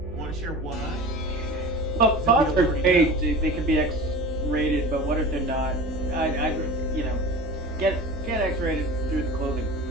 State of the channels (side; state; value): both; normal; correlation 0.34